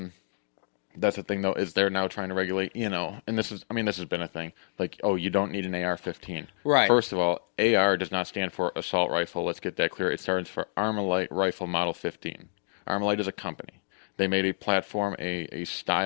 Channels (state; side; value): silent; right; digital silence